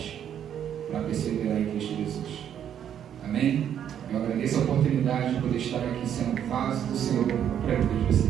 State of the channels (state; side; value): quieter; left; 9.5 dB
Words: para perseverar em Cristo Jesus. Amém? Eu agradeço a oportunidade de poder estar aqui sendo vaso do Senhor para a vida de